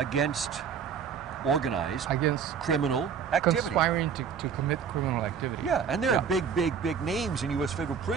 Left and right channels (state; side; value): quieter; left; 7.0 dB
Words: organized Against criminal activity. conspiring to commit criminal activity. Yeah, and there are big names in U.S. federal